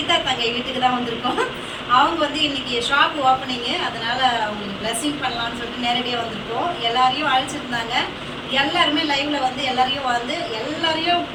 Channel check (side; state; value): both; identical; correlation 1.00